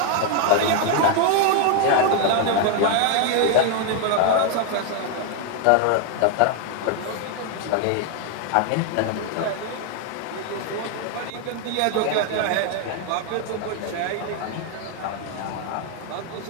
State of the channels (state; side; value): different; both; correlation 0.00